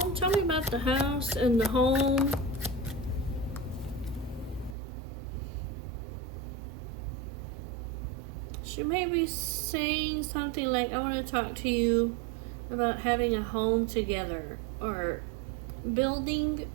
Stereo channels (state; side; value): drops out; left; at 4.8 s